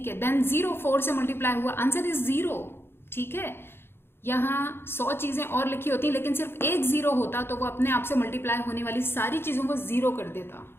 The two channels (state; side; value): late; right; 0.11 ms